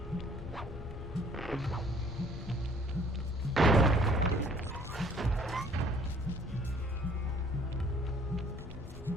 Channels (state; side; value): normal; both; correlation 0.57